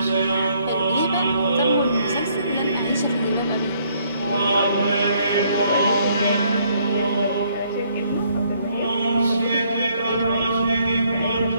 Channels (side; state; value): both; inverted; correlation -0.67